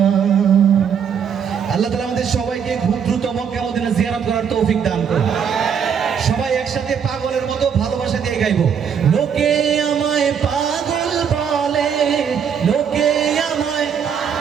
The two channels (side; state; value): left; quieter; 7.4 dB